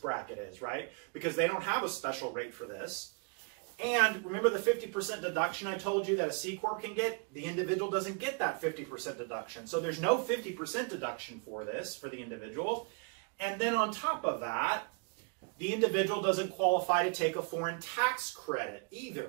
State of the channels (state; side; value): quieter; left; 35.3 dB